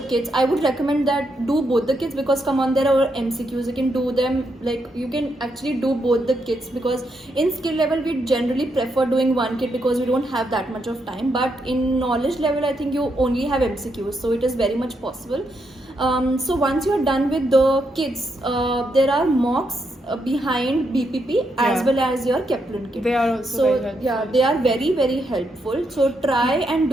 I would recommend that do both the kits, because come on, there are MCQs, you can do them, like you can actually do both the kits, because in skill level we generally prefer doing one kit because we don't have that much of time, but in knowledge level I think you only have MCQs, so it is very much possible. So once you're done with the kits, there are mocks behind BPP as well as your Kaplan kit. They are also very helpful. They are very, very helpful. So try and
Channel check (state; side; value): normal; both; correlation 0.80